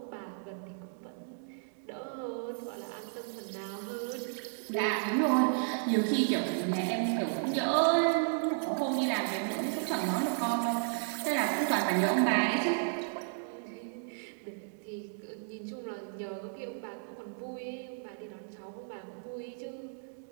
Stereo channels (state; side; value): silent; left; digital silence